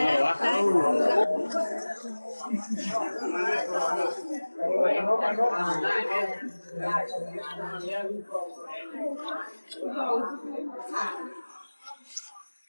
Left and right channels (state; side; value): inverted; both; correlation -1.00